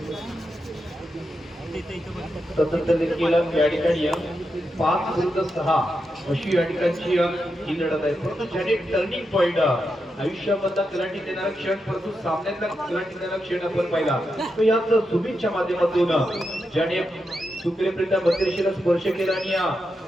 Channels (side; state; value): both; normal; correlation 0.86